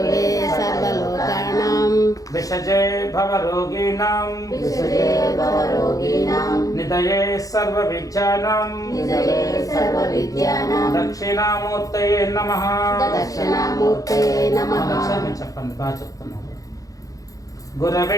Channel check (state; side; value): late; right; 0.17 ms